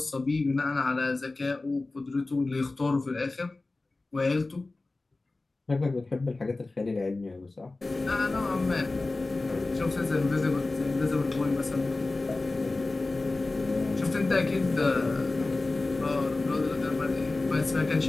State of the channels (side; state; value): right; quieter; 3.2 dB